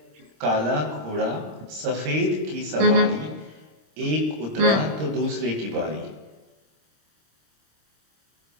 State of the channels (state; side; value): late; left; 26 ms